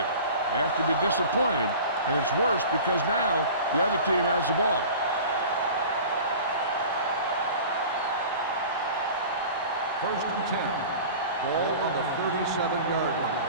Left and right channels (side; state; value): both; inverted; correlation -0.39